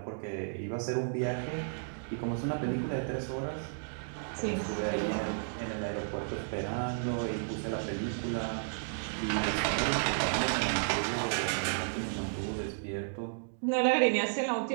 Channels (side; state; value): left; silent; digital silence